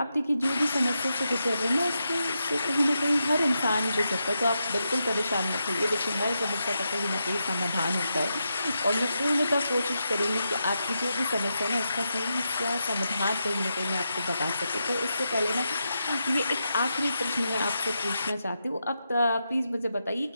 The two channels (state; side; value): inverted; both; correlation -0.86